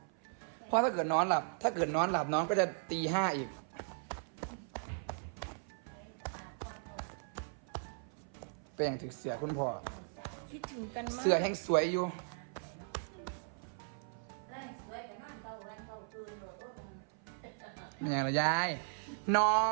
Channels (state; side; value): silent; left; 53 dB below the other